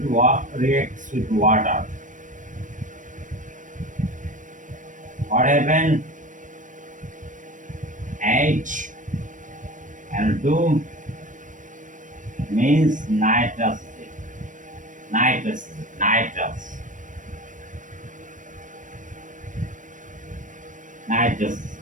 water. What happened? H and 2 means nitrous.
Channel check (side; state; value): left; late; 0.37 ms